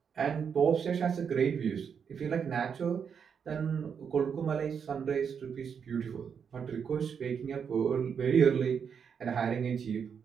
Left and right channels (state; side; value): quieter; left; 7.0 dB